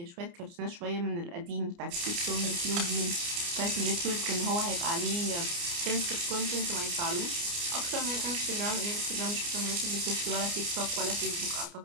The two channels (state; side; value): late; left; 29 ms